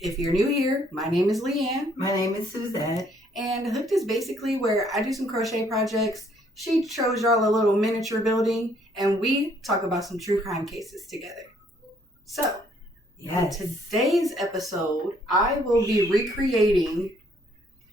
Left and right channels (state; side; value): normal; both; correlation 0.65